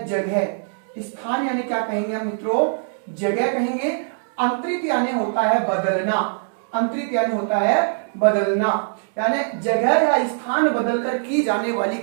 जगह, स्थान यानी क्या कहेंगे हम मित्रों, जगह कहेंगे। अंतरित यानी होता है बदलना, अंतरित यानी होता है बदलना, यानी जगह या स्थान बदलकर की जाने वाली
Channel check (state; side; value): silent; left; digital silence